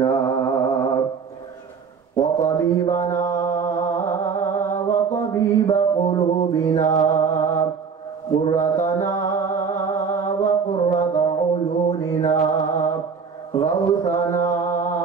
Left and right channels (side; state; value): left; quieter; 5.9 dB